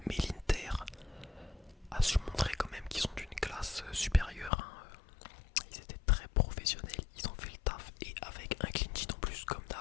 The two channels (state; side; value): drops out; right; at 4.5 s